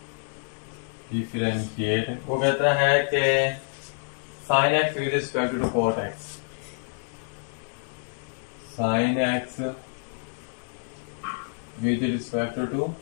वो कहता है कि sine x with respect to cot x, sine x with respect to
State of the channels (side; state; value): right; silent; 60 dB below the other